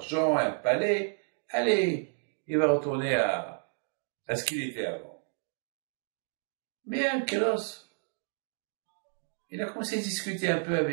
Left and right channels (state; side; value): silent; left; 57 dB below the other